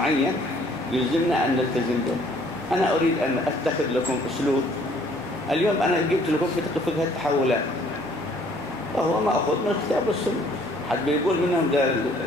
يلزمنا أن نلتزم به. أنا أريد أن أتخذ لكم أسلوب. اليوم أنا جبت لكم في فقه التحولات، وهو ما أخذ من الكتاب والسنة. حد بيقول منهم ده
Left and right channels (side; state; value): both; normal; correlation 0.60